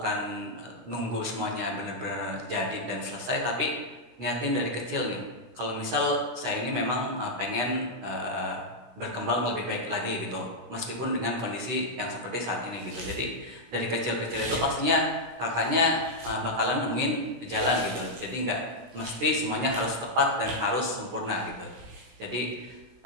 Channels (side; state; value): left; late; 16 ms